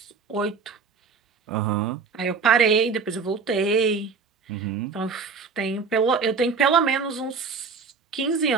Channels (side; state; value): left; quieter; 5.2 dB